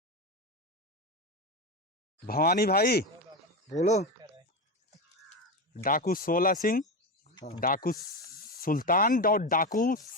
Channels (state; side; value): normal; both; correlation 0.17